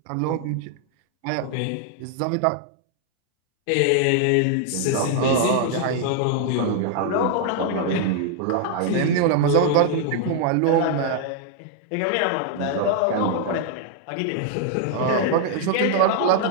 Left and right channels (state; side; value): different; both; correlation 0.00